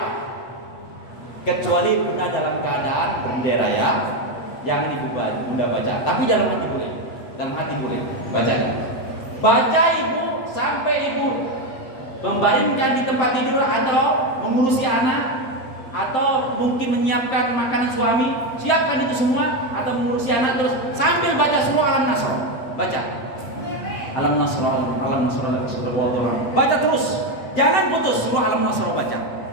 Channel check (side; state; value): right; late; 7.7 ms